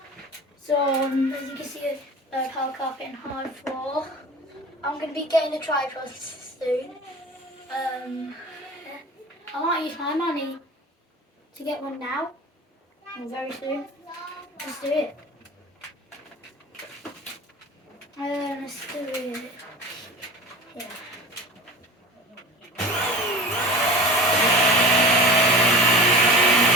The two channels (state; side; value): normal; both; correlation 0.36